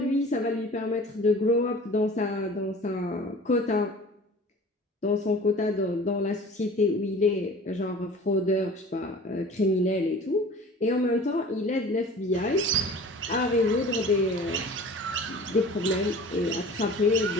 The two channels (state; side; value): normal; both; correlation 0.42